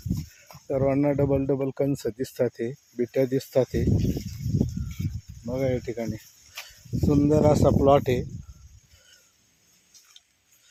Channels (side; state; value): both; identical; correlation 1.00